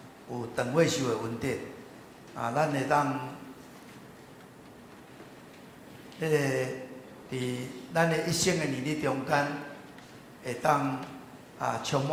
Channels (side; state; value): both; identical; correlation 1.00